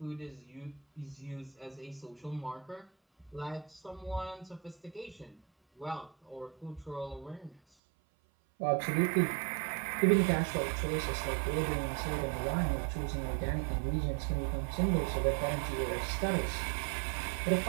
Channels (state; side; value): drops out; left; at 7.6 s